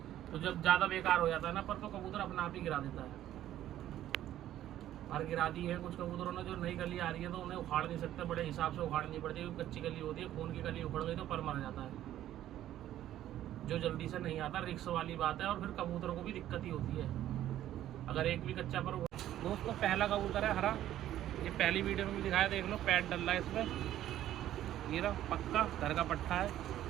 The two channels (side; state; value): left; quieter; 12.6 dB